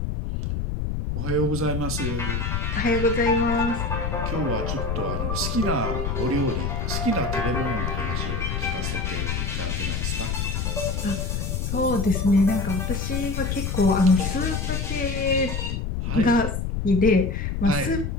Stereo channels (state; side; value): noise; left; rumble, 1 dB below the sound